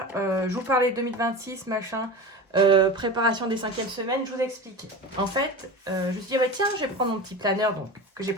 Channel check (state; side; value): normal; both; correlation 0.29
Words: je vous parlais 2026, machin, préparation des 5e semaines, je vous explique. En fait, je me suis dit, bah, tiens, je vais prendre mon petit planeur donc, que j'ai